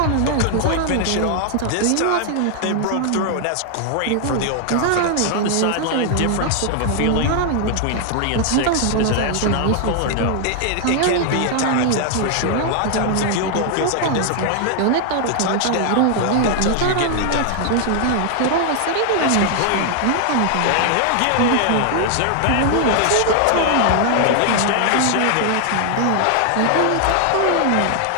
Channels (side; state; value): both; different; correlation 0.00